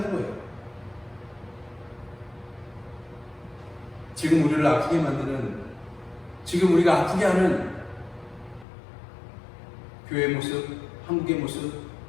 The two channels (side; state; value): right; drops out; at 8.7 s